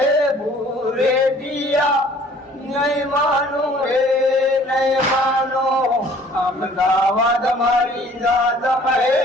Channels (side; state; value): both; normal; correlation 0.54